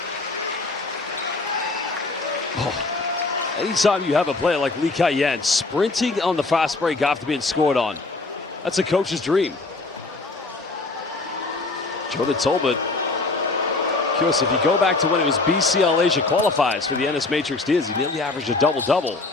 Oh. Anytime you have a player like Lee Kai-yen sprinting on the fast break after being scored on, that's a coach's dream. Jordan Tolbert. Curious, if you go back to when it was BCL Asia qualifiers for the NS Matrix Diaz, he nearly averaged a double-double.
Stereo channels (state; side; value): quieter; right; 3.4 dB